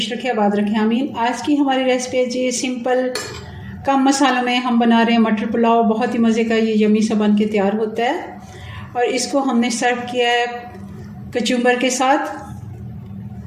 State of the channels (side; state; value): both; identical; correlation 1.00